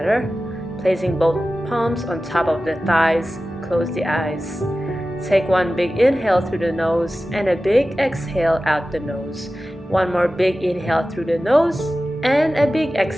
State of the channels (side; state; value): both; normal; correlation 0.95